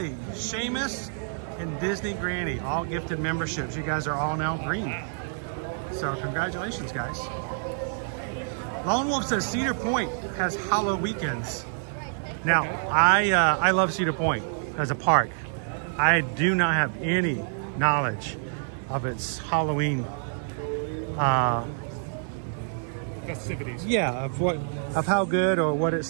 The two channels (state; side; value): silent; left; digital silence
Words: Seamus, and Disney Granny, all gifted memberships. You guys are all now green. So congratulations, guys. Lone Wolf says Cedar Point has Hollow weekends. Now, I love Cedar Point as a park. I do not have any knowledge of its Halloween festivities. Yeah, of how good or what